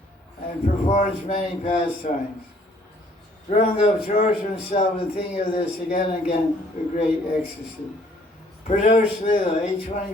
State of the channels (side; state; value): both; normal; correlation 0.61